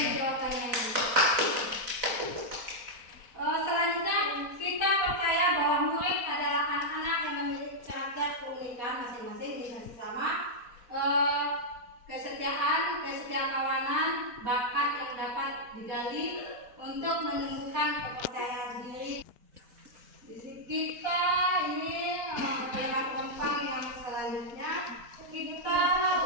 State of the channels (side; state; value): left; late; 4.1 ms